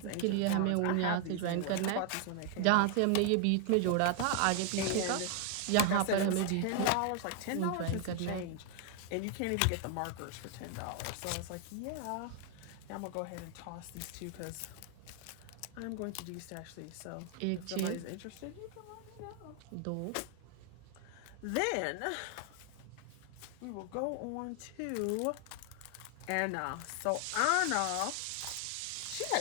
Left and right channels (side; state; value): both; different; correlation 0.00